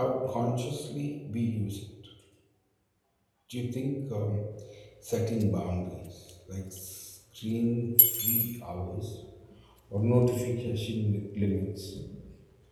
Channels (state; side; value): identical; both; correlation 1.00